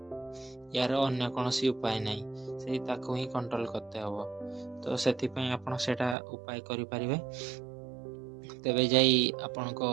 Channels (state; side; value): drops out; left; at 6.2 s